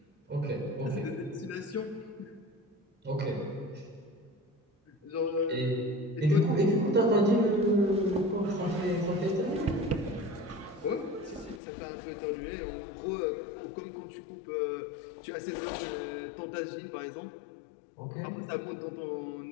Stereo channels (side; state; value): right; drops out; at 11.6 s